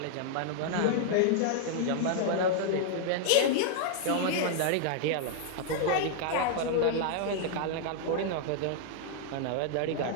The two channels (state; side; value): different; both; correlation -0.01